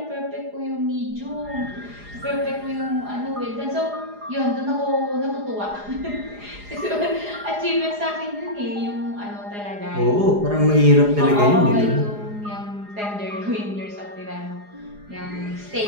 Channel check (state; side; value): late; left; 4.8 ms